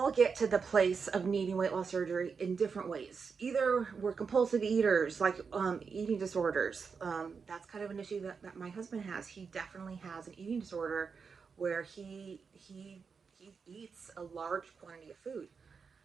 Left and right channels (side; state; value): left; quieter; 5.6 dB